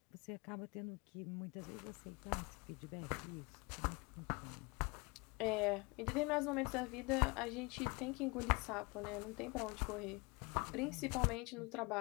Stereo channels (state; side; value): quieter; right; 27.6 dB